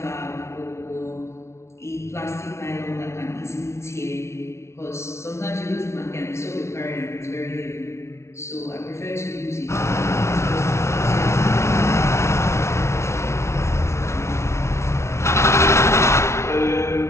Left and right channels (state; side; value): late; right; 0.13 ms